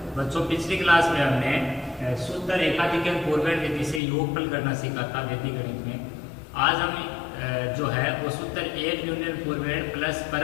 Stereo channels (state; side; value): drops out; right; at 4.0 s